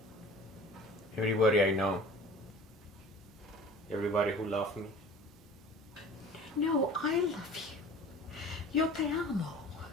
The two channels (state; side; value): normal; both; correlation 0.43